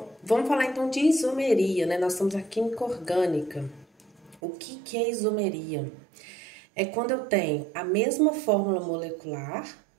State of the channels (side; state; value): left; drops out; at 4.4 s